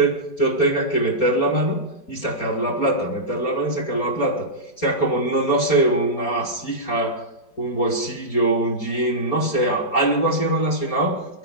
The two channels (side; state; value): right; late; 4.3 ms